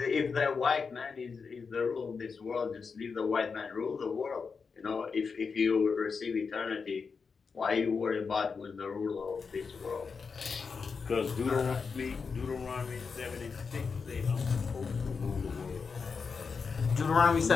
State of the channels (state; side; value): quieter; right; 5.3 dB